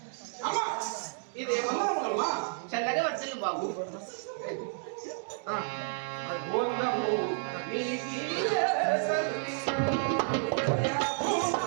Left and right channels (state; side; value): silent; left; 57 dB below the other